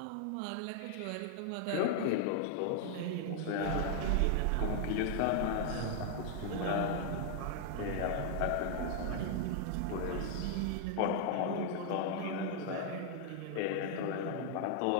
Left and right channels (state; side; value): different; both; correlation 0.00